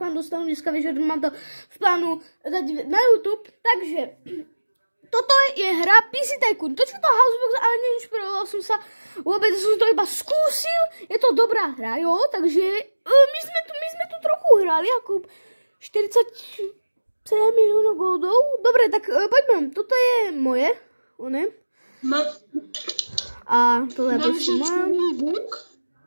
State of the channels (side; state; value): both; inverted; correlation -1.00